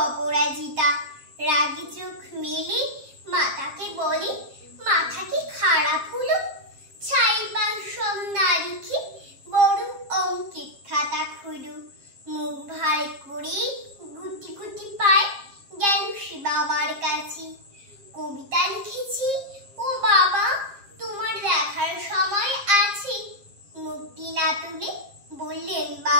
অপরাজিতা। রাগি চোখ মেলে মাতাকে বলে, মাথা কি খারাপ হলো? ছাইবার সব না লিখে বড় অঙ্কের খাতা খুলো। মুখ ভার করে গুটি গুটি পায় গেল সে বাবার কাছে। কবিতা লিখেছি ও বাবা, তোমার দেখার সময় আছে? মুখটি না তুলে বললেন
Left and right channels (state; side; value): late; left; 7.4 ms